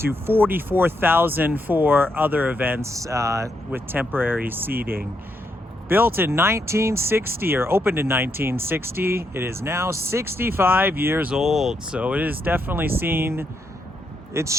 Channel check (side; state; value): both; normal; correlation 0.79